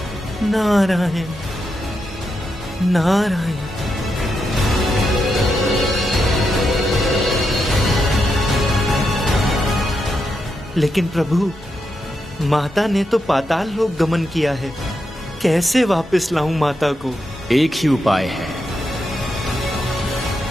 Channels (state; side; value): normal; both; correlation 0.84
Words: नारायण नारायण। लेकिन प्रभु, माता ने तो पाताल लोक गमन किया है। कैसे वापस लाऊं माता को? एक ही उपाय है,